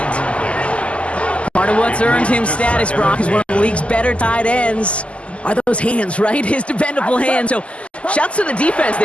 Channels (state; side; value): late; right; 0.058 ms